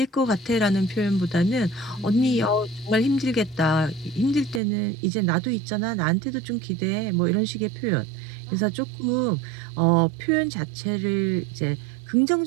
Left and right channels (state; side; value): drops out; left; at 4.6 s